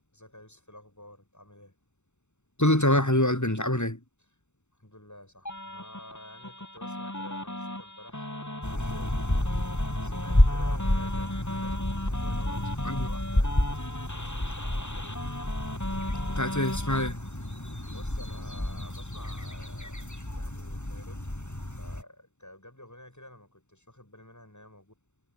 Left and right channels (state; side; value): late; right; 0.83 ms